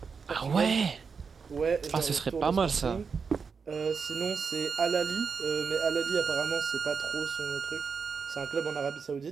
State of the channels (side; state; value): left; quieter; 5.6 dB